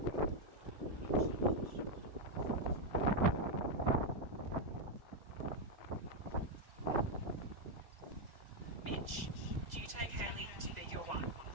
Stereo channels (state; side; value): late; left; 2.0 ms